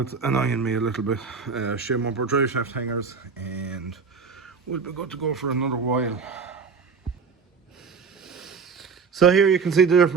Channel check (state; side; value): quieter; left; 5.4 dB